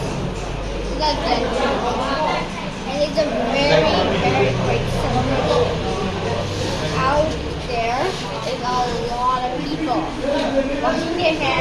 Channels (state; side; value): identical; both; correlation 1.00